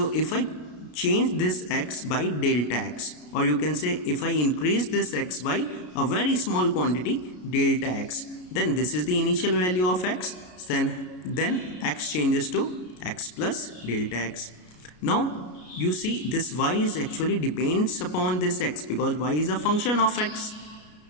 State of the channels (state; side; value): late; right; 33 ms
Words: if I change this x by delta x, or you can say if I increase this x by a very small quantity, delta x, then this is the initial value of x, then x changes to x plus delta x. Now you see this y is actually depends upon this x, because y is a function of x.